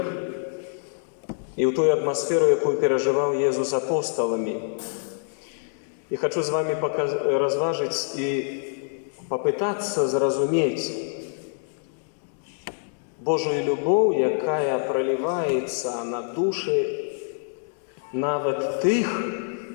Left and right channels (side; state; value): right; silent; digital silence